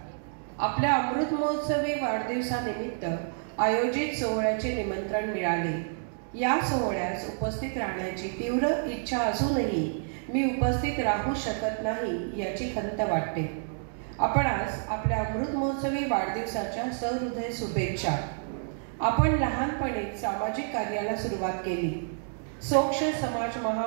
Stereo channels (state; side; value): silent; left; digital silence